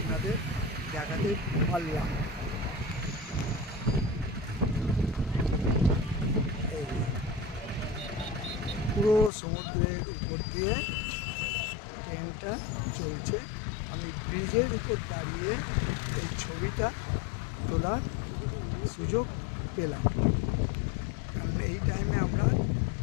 দেখাতে পারলাম। পুরো সমুদ্রের উপর দিয়ে ট্রেনটা চলছে। আমি ব্রিজের উপর দাঁড়িয়ে এই ছবিটা তোলার সুযোগ পেলাম। কারণ এই টাইমে আমরা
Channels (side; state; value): right; drops out; at 9.3 s